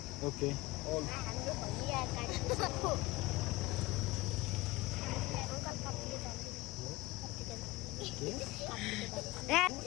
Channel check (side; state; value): right; quieter; 20.3 dB